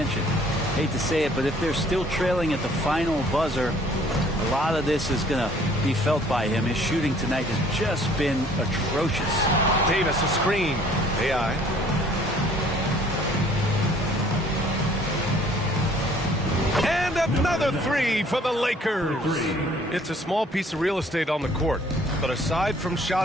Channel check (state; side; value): normal; both; correlation 0.57